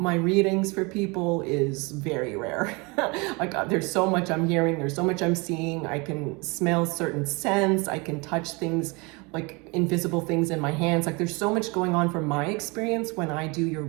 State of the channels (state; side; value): quieter; left; 27.9 dB